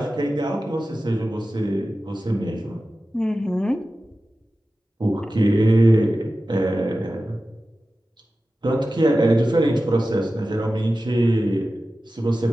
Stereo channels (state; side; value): normal; both; correlation 0.94